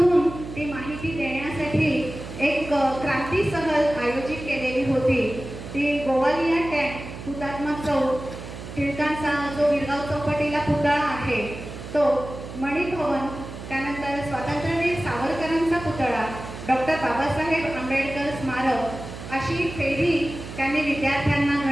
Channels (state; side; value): noise; right; hum, 11 dB below the sound